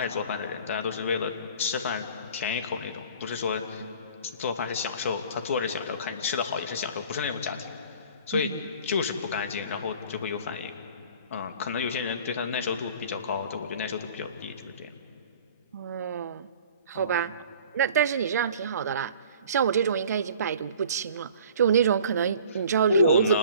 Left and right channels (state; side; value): inverted; both; correlation -0.47